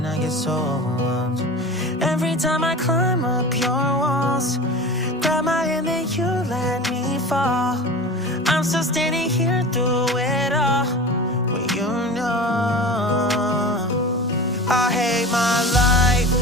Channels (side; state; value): both; normal; correlation 0.34